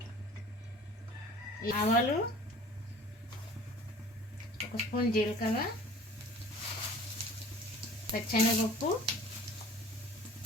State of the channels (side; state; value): both; normal; correlation 0.46